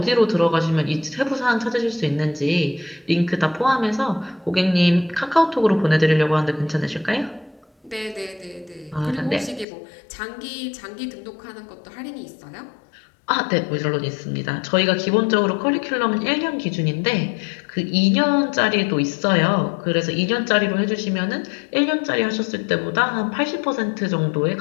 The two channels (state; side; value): drops out; right; at 9.7 s